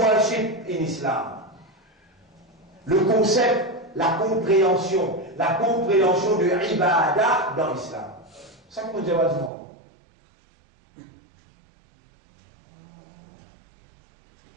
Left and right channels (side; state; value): left; drops out; at 9.5 s